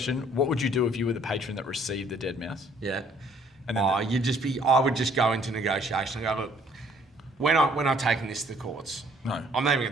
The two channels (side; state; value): both; normal; correlation 0.60